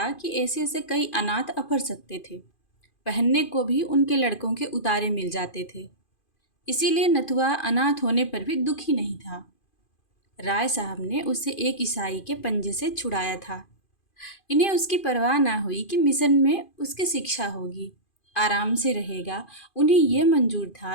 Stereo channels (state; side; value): late; right; 2.5 ms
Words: कि ऐसे ऐसे कई अनाथ अफर सकते थे। पहनने को भी उनके लड़कों के उतारे मिल जाते थे। इसीलिए नथुआ अनाथ होने पर भी दुखी नहीं था। राय साहब ने उसे एक ईसाई के पंजे से छुड़ाया था। इन्हें उसकी परवाह ना हुई कि मिशन में उसकी शिक्षा होगी, आराम से रहेगा। उन्हें यह मंजूर